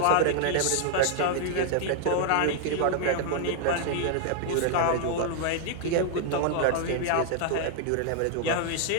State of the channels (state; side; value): different; both; correlation -0.01